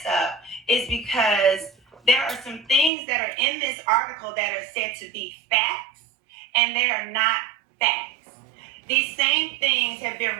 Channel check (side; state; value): left; drops out; at 2.9 s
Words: up is because there are some things that are in this article that are said to be facts, and they are not facts. These same things have been